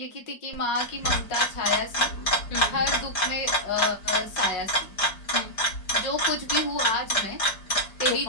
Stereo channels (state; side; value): late; right; 5.1 ms